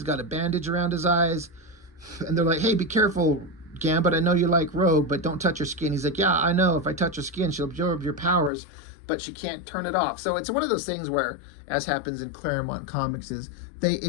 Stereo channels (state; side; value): drops out; right; at 8.5 s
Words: got a bandage around his eyes. And they're like, hey, be careful, Gambit. I know you like Rogue, but don't touch her skin. He's like, yeah, I know. If I touch her skin, she'll absorb your powers, but she can't turn it off. So it's one of those things where, as happens in Claremont comics, is they